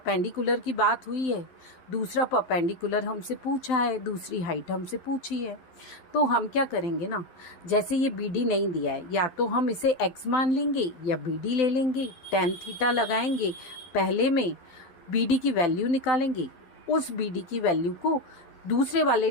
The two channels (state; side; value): late; right; 11 ms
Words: की बात हुई है, दूसरा परपेंडिकुलर हमसे पूछा है, दूसरी हाइट हमसे पूछी है, तो हम क्या करेंगे ना, जैसे ये बी डी नहीं दिया है, या तो हम इसे x मान लेंगे या बी डी ले लेंगे, tan थीटा लगाएंगे, पहले में बी डी की वैल्यू निकालेंगे, उस बी डी की वैल्यू को दूसरे